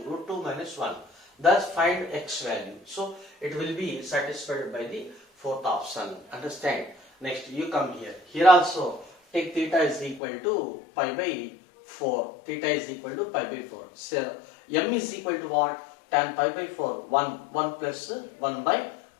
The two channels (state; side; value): drops out; right; at 10.2 s